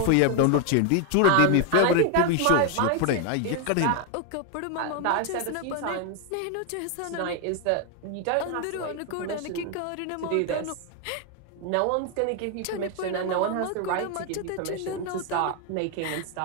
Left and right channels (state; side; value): different; both; correlation 0.01